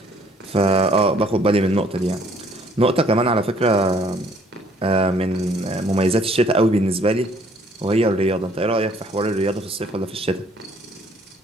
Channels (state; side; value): normal; both; correlation 0.61